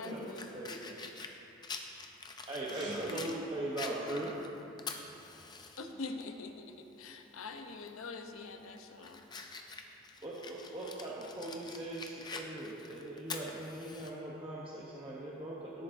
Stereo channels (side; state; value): both; normal; correlation 0.36